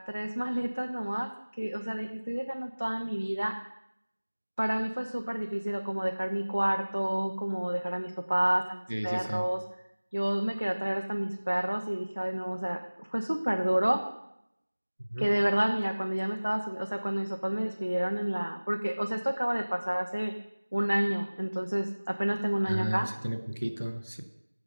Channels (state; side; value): inverted; both; correlation -1.00